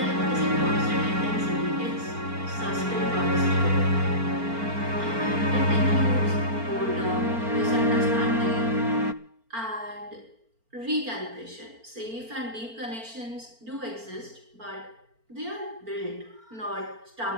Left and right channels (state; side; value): late; left; 4.4 ms